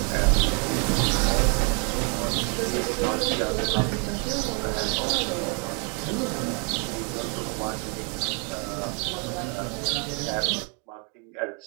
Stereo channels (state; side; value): quieter; left; 36.5 dB